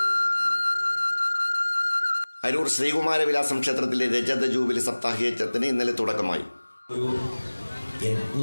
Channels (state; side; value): inverted; both; correlation -1.00